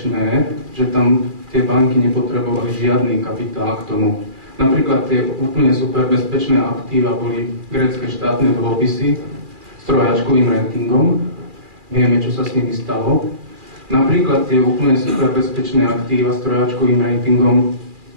že tam tie banky nepotrebovali žiadny kapitál k tomu. Napríklad tie úplne super bezpečné aktíva boli grécke štátne dlhopisy s trojačkovým ratingom. Vieme, čo sa s nimi stalo. Napríklad tie úplne super bezpečné aktíva s trojačkovým ratingom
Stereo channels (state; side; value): late; left; 2.4 ms